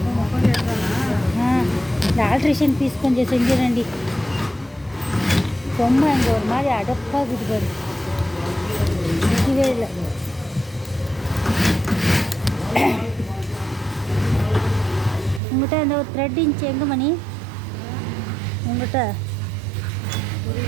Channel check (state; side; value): drops out; left; at 15.4 s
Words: இந்த ஆல்ட்ரேஷன் பீஸ் கொஞ்சம் செஞ்சிடண்டி. ரொம்ப அங்கே ஒரு மாதிரி அடப்பாகுது பாரு, நிற்கவே இல்லை. உங்கள்கிட்ட அந்த ஒரு த்ரெட் இன்ச்சு எங்கே மணி? உங்கள்கிட்ட